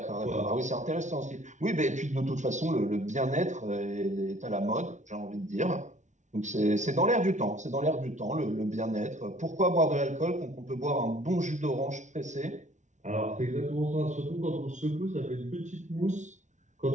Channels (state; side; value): late; left; 0.35 ms